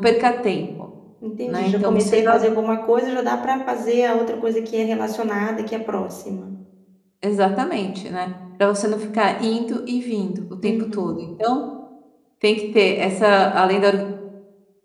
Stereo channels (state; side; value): identical; both; correlation 1.00